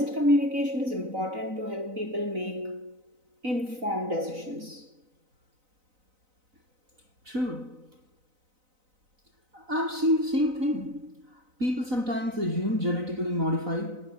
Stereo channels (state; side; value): late; left; 4.0 ms